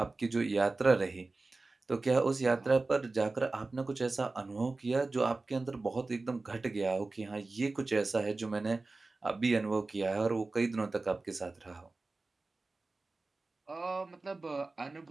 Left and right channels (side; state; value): left; quieter; 3.4 dB